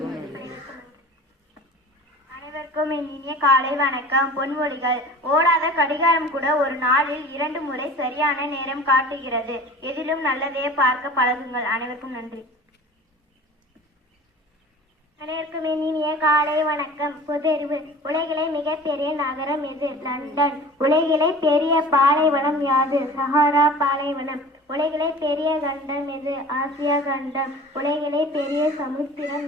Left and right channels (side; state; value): both; normal; correlation 0.41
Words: அனைவருக்கும் இனிய காலை வணக்கம். பொன்மொழிகள்: ஓடாத கடிகாரம் கூட ஒரு நாளில் 2 முறை சரியான நேரம் காட்டுகிறது. எதிலும் நல்லதையே பார்க்க பழகுங்கள். அனைவருக்கும் நன்றி. அனைவருக்கும் இனிய காலை வணக்கம். பொதறிவு: உலகிலே மிகப்பெரிய நகரம் எது? லண்டன். உலகிலே பெரிய பாலைவனம் யாது? சஹாரா பாலைவனம். உலகிலே பெரிய கண்டம் எது? ஆசியா கண்டம். உலகிலே பெரிய சமுத்திரம்